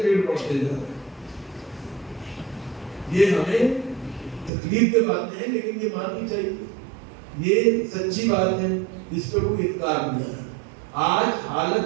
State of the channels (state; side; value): drops out; left; at 4.5 s